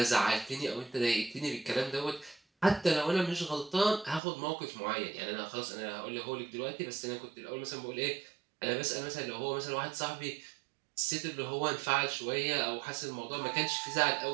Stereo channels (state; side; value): drops out; left; at 4.2 s